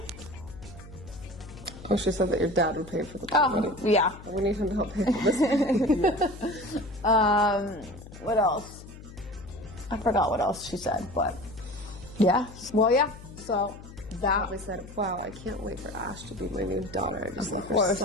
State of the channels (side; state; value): left; noise; hum, 16 dB below the sound